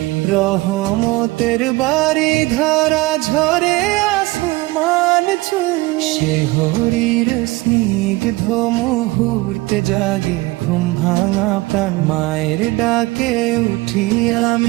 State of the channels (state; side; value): quieter; left; 21.2 dB